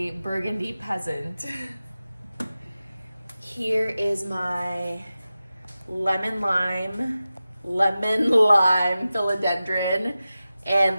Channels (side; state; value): both; inverted; correlation -0.94